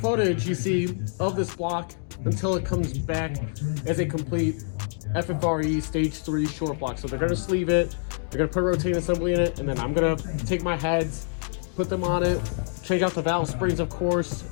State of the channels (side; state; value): right; silent; digital silence